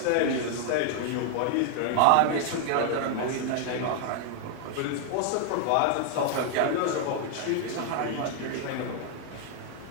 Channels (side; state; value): both; different; correlation 0.00